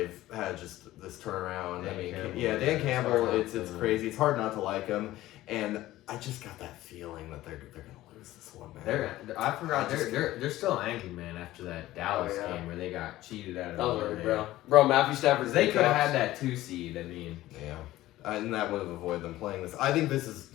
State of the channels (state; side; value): quieter; right; 15.8 dB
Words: had just this turnaround. Dan I mean, Campbell. yeah, Dan It's Campbell. hard not It's to- crazy. It's hard not to like him, and I just got that feeling that they're gonna lose this one, man. I forgot I just- they're still angry, man, after that Dallas Oh, yeah. game where they got cheated out of That was nowhere, right, man. bro. Bro, Matthew Stafford. 'Cause they could have had that 2 seed. I mean, Yeah. And that would have avoided them playing this. I think this is